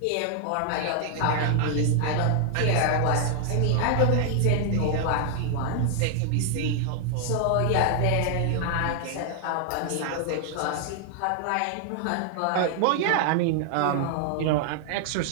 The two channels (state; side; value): different; both; correlation 0.00